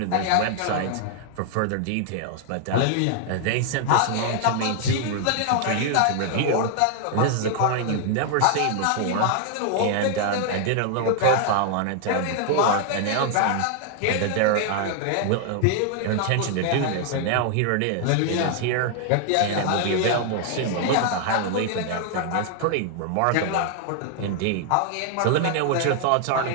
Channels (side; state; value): both; different; correlation 0.00